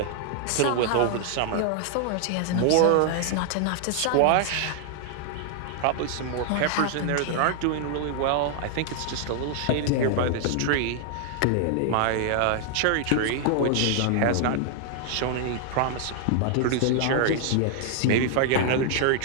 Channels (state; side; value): different; both; correlation -0.01